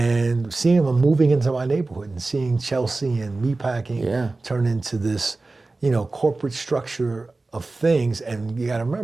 seeing them moving into my neighborhood and seeing Chelsea and meatpacking turn into this, corporate structure of things. And you got to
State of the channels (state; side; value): quieter; left; 3.4 dB